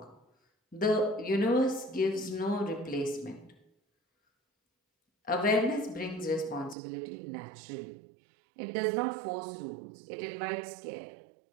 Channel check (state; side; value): drops out; left; at 6.8 s